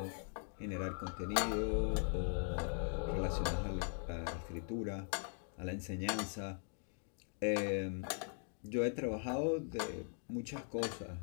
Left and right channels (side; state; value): right; silent; 51 dB below the other